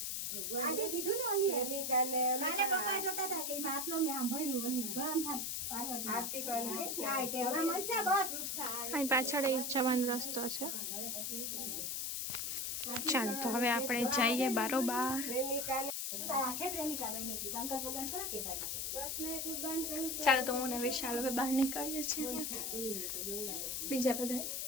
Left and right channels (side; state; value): left; noise; hiss, 2 dB below the sound